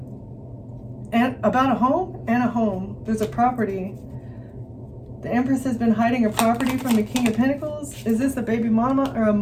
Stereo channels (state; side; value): identical; both; correlation 1.00